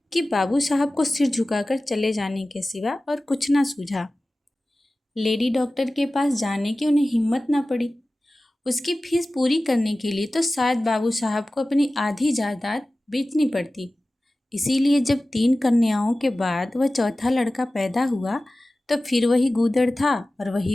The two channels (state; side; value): normal; both; correlation 0.96